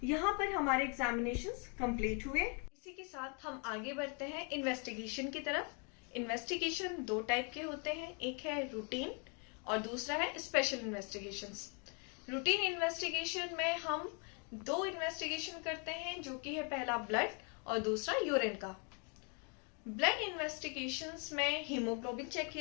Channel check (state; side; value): quieter; right; 36.6 dB